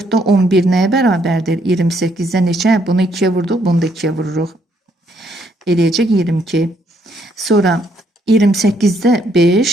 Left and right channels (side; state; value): both; normal; correlation 0.71